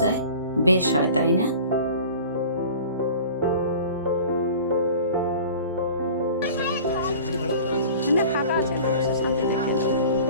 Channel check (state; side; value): inverted; both; correlation -0.42